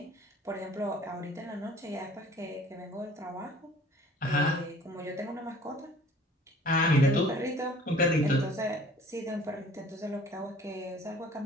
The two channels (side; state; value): both; normal; correlation 0.50